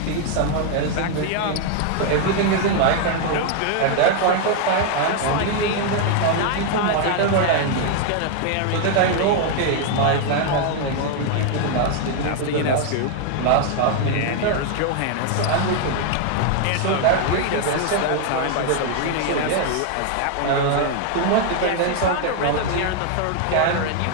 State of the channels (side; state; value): both; different; correlation 0.00